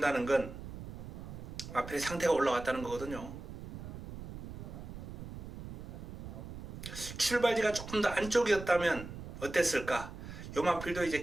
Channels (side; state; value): right; noise; rumble, 10 dB below the sound